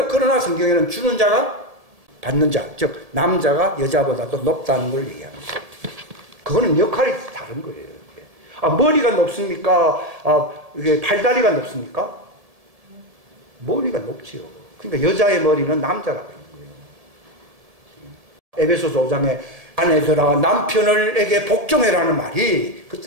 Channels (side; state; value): left; late; 1.7 ms